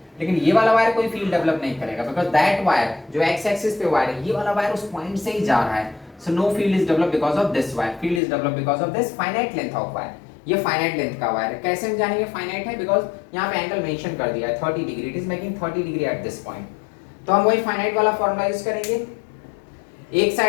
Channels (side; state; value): right; drops out; at 8.2 s